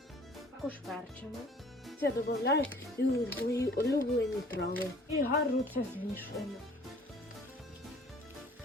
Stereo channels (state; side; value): normal; both; correlation 0.52